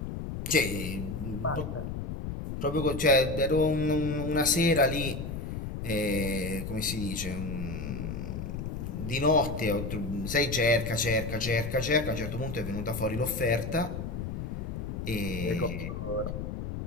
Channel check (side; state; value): left; noise; rumble, 5 dB below the sound